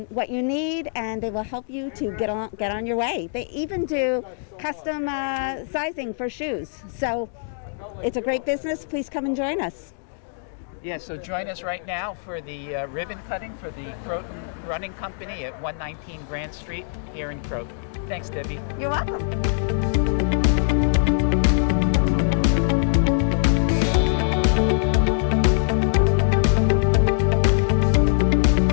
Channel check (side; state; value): right; silent; digital silence